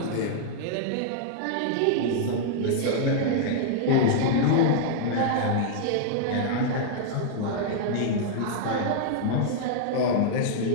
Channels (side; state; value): both; different; correlation -0.01